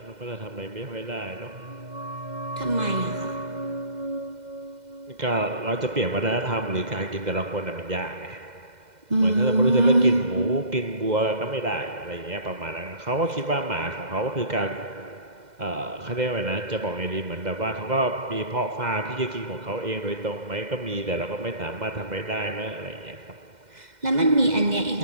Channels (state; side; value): late; left; 2.0 ms